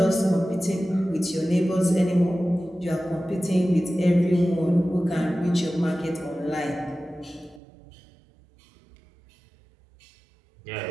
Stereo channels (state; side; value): drops out; left; at 7.6 s